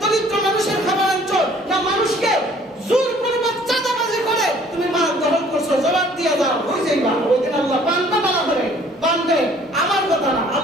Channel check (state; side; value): normal; both; correlation 0.56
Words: দরিদ্র মানুষের খাবার আনছো, না মানুষকে জোরপূর্বক চাঁদাবাজি করে তুমি মাল দখল করছো, জবাব দিয়ে দাও, হয়ে যাইবা। ওই দিন আল্লাহ বান্দা মালা করে বান্দে, আমার কথা না,